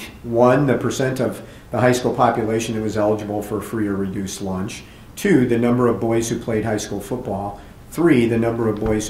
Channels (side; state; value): both; identical; correlation 1.00